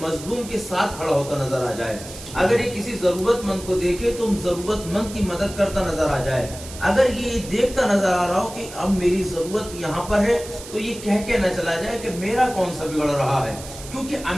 کے ساتھ کھڑا ہوتا نظر آ جائے، اگر یہ کسی ضرورت مند کو دیکھے تو ضرورت مند کی مدد کرتا نظر آ جائے، اگر یہ دیکھتا نظر آ رہا ہو کہ اب میری ضرورت یہاں پر ہے تو یہ کہہ کے نہ چلا جائے کہ میرا کون سا بگڑ رہا ہے، کیونکہ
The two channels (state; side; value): noise; right; hiss, 14 dB below the sound